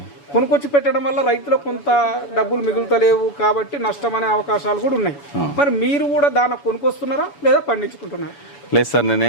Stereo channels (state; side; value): late; right; 7.0 ms